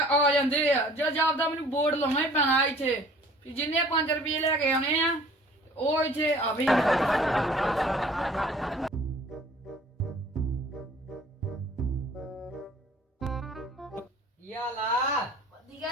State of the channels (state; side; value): normal; both; correlation 0.51